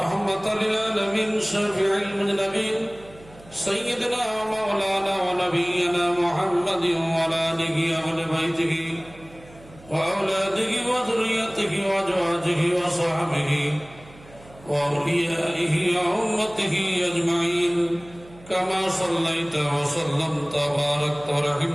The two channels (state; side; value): noise; right; hum, 23 dB below the sound